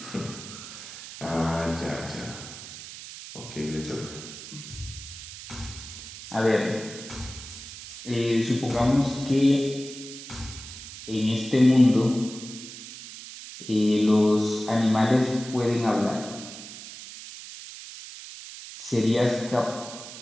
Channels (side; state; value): right; noise; hiss, 13 dB below the sound